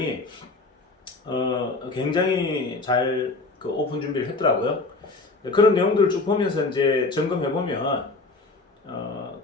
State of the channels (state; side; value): quieter; right; 3.5 dB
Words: 굉장히 잘 오픈 준비를 했더라고요. 그런 내용들을 쭉 보면서 이제 점검해 보면